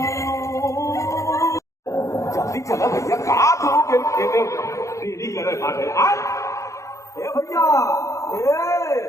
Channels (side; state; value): right; late; 0.15 ms